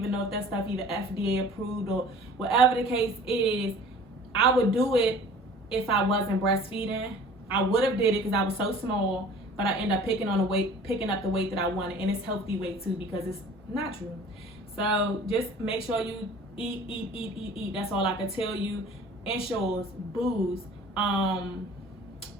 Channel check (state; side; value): normal; both; correlation 0.47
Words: know if that stuff even FDA approved or whatever the case is. I would do it if I wasn't breastfeeding. I would have did it because I was so small, but I end up picking up the weight that I wanted, and it's healthy weight too because it's natural. So just make sure you eat. That's all I can tell you. Ensures, booze.